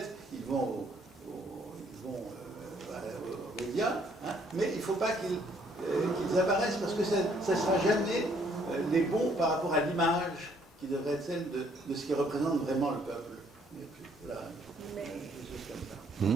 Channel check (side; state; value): both; normal; correlation 0.65